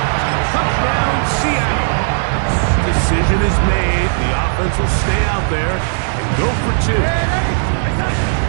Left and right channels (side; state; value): left; silent; 69 dB below the other